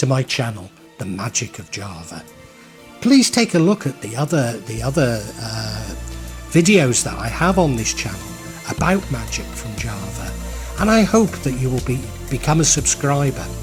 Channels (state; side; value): identical; both; correlation 1.00